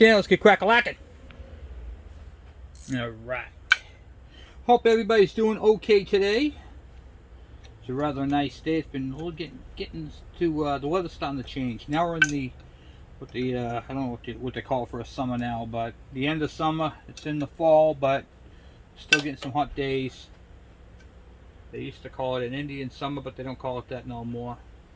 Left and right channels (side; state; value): both; identical; correlation 1.00